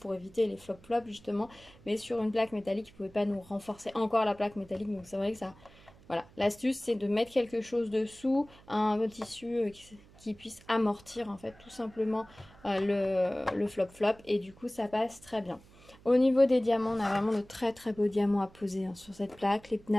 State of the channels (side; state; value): right; noise; hum, 24 dB below the sound